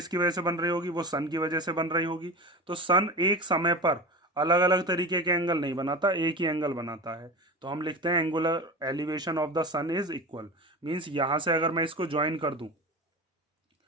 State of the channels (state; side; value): normal; both; correlation 0.29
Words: वजह से बन रही होगी, वो सन की वजह से बन रही होगी। तो सन एक समय पर अलग अलग तरीके के एंगल नहीं बनाता, एक ही एंगल बनाता है। तो हम लिखते हैं angular elevation of the sun is equal. Means यहां से अगर मैं इसको ज्वाइन कर दूं